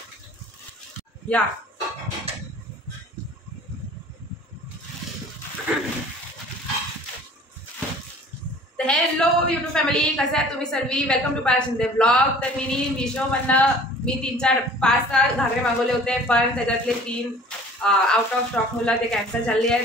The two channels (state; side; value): normal; both; correlation 0.48